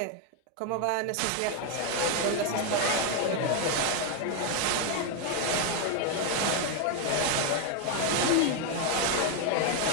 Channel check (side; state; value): both; different; correlation 0.01